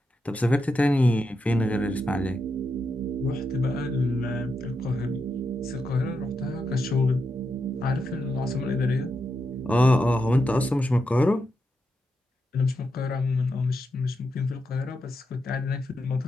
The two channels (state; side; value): normal; both; correlation 0.85